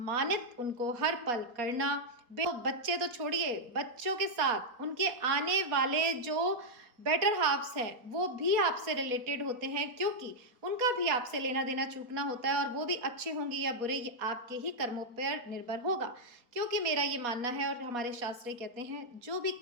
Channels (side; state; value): left; late; 4.3 ms